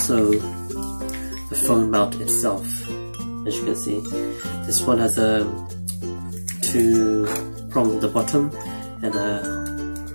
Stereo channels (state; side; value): inverted; both; correlation -1.00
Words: the phone mount itself, as you can see. This one has a 2 prongs at the bottom and a